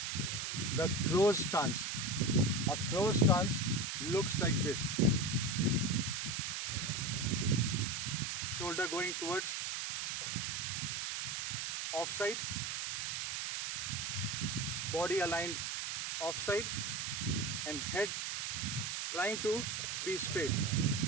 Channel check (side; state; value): right; noise; hiss, 2 dB below the sound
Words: the closed stance. A closed stance looks like this. Shoulder going towards offside, body aligned offside, and head trying to be straight.